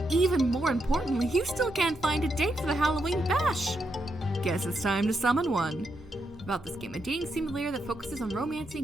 even more importantly, you still can't find a date for the Halloween bash. Guess it's time to summon one. About this game, a dating simulator that focuses on romancing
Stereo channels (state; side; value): noise; right; hum, 22 dB below the sound